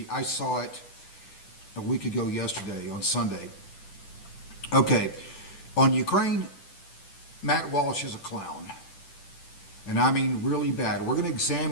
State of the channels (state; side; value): late; right; 10 ms